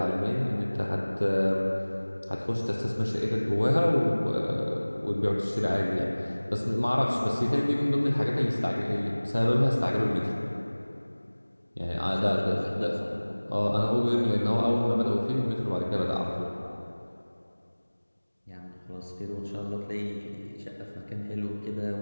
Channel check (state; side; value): inverted; both; correlation -1.00